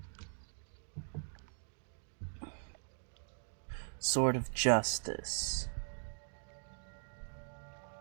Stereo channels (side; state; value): left; silent; digital silence